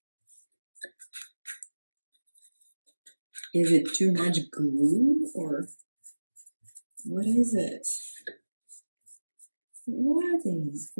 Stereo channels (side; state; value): both; inverted; correlation -1.00